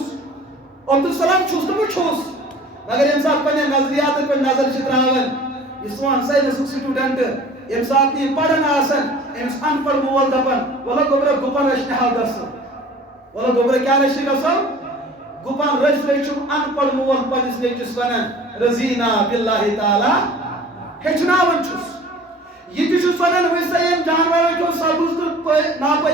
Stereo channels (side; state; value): both; normal; correlation 0.46